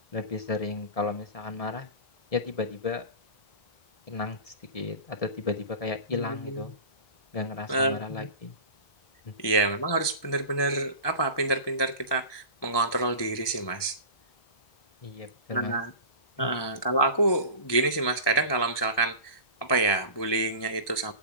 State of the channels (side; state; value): right; late; 1.2 ms